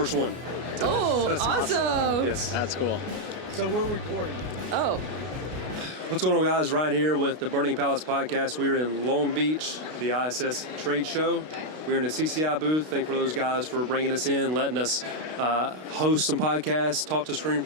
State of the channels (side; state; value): left; late; 32 ms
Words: one. Oh, That's awesome. Yes. That's cool. So we're recording. Oh, What's going on, guys? Ryan here with the Burning Pallets podcast. We're in Long Beach, the ISS trade show. We're in the CCI booth. Thank for those guys for bringing us in, letting us host some podcasts, talk to screen